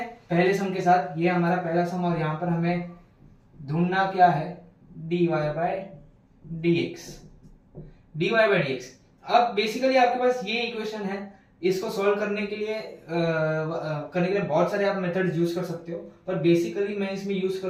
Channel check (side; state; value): both; identical; correlation 1.00